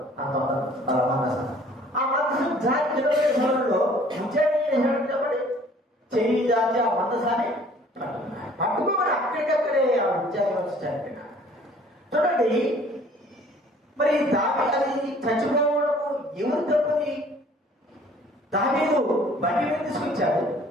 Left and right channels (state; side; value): normal; both; correlation 0.54